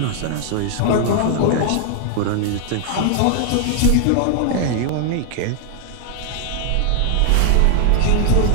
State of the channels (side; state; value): both; different; correlation 0.00